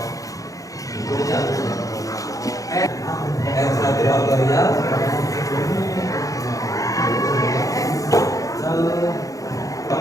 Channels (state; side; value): late; right; 0.17 ms